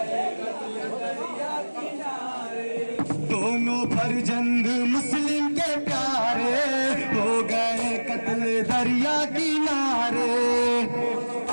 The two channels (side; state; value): both; inverted; correlation -1.00